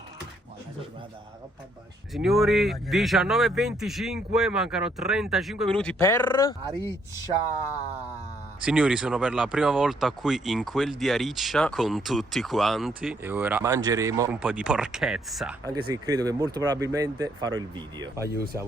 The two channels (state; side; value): normal; both; correlation 0.70